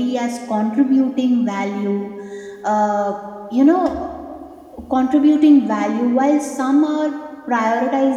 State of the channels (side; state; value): both; identical; correlation 1.00